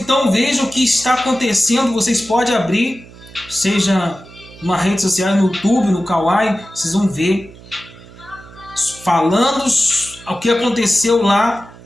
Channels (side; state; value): right; noise; hum, 20 dB below the sound